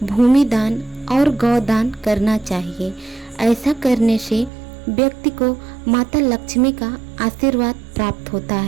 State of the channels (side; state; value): left; drops out; at 4.5 s